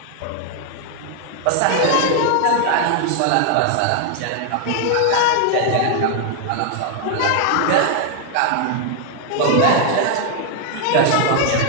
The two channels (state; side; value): different; both; correlation 0.00